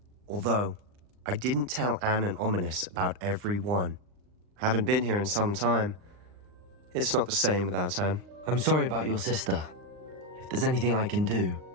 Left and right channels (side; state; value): left; late; 39 ms